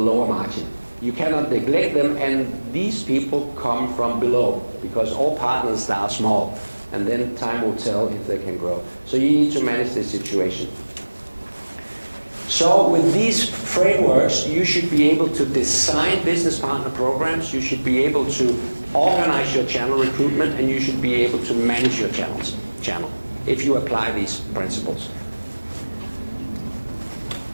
margin. You cannot neglect them, and these people come from below, because all partners start small, and then time will tell if they can grow. So you need to manage this situation. So with these frameworks, you should be able to design business partner programs, you should be able to organize your channel recruitment, and you should be able to manage your channel if you apply these principles.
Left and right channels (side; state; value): both; inverted; correlation -1.00